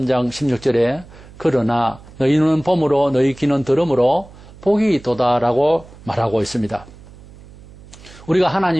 16절에 그러나 너희 눈은 봄으로 너희 귀는 들음으로 복이 도다라고 말하고 있습니다. 우리가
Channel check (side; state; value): right; noise; hum, 21 dB below the sound